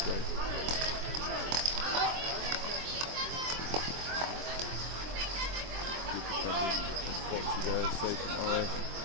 There, safe tomorrow.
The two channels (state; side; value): late; left; 23 ms